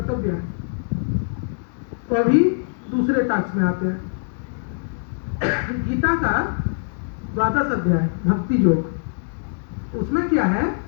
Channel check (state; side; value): silent; right; digital silence